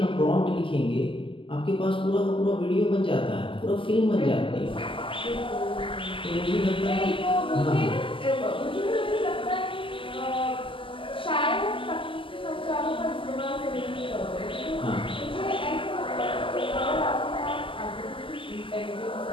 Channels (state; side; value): late; right; 0.25 ms